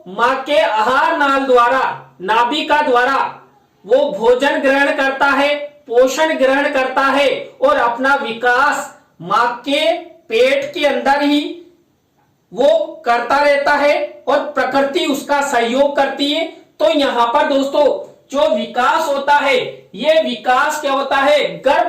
मां के आहार नाल द्वारा, नाभिका द्वारा वो भोजन ग्रहण करता है, पोषण ग्रहण करता है और अपना विकास मां के पेट के अंदर ही वो करता रहता है और प्रकृति उसका सहयोग करती है। तो यहाँ पर दोस्तों, जो विकास होता है, ये विकास क्या होता है, गर्भ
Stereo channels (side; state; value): both; identical; correlation 1.00